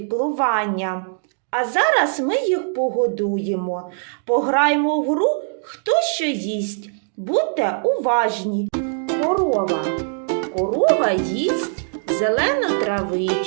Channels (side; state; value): left; silent; 57 dB below the other